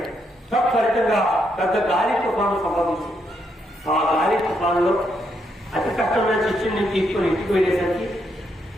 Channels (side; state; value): both; normal; correlation 0.78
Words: ఫలితంగా పెద్ద గాలి తుఫాను సంభవించింది. ఆ గాలి తుఫానులో అతి కష్టమైన శిష్యుని తీసుకొని ఇంటికి వెళ్ళేసరికి